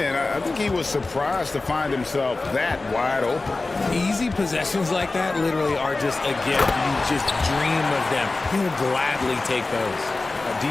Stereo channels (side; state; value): right; quieter; 3.4 dB